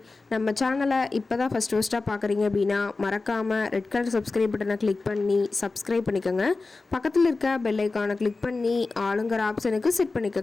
நம்ம சேனலை இப்போ தான் ஃபஸ்ட்டாக பார்க்குறீங்க அப்படின்னா மறக்காமல் ரெட் கலர் சப்ஸ்கிரைப் பட்டனை கிளிக் பண்ணி சப்ஸ்கிரைப் பண்ணிக்கோங்க. பக்கத்தில் இருக்க பெல் ஐக்கானை கிளிக் பண்ணி ஆளுங்கிற ஆப்ஷனுக்கு செட்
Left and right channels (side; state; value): right; quieter; 3.7 dB